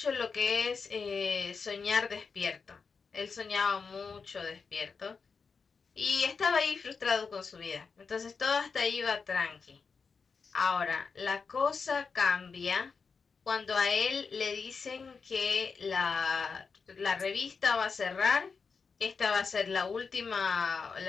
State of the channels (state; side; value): quieter; right; 5.2 dB